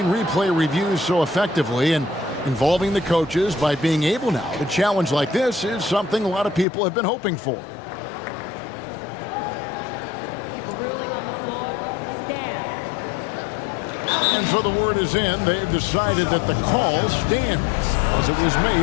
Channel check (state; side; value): drops out; right; at 6.7 s